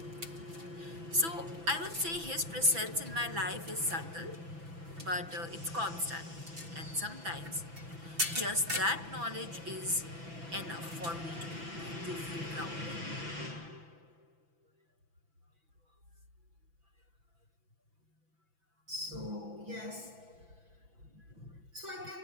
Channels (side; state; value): left; late; 6.0 ms